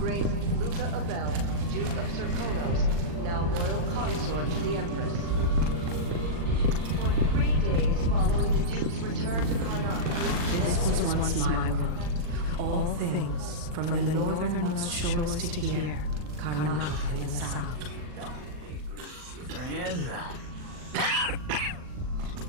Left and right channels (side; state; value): left; late; 40 ms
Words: Luca Abel, Duke of Serkonos, now royal consort to the Empress. For 3 days following the Duke's return to Karnataka, This was once my world. All things, from the northernmost shores to here, Karnataka in the south. Friend.